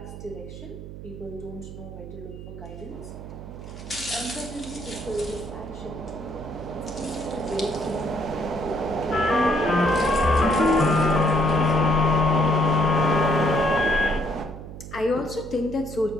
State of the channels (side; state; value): right; noise; hum, 12 dB below the sound